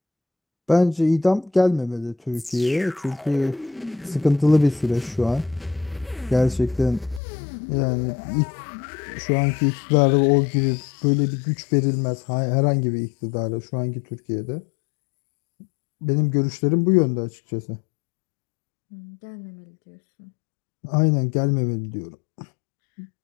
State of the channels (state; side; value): drops out; right; at 7.2 s